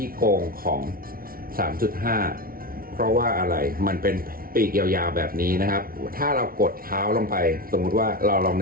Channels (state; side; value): late; left; 0.43 ms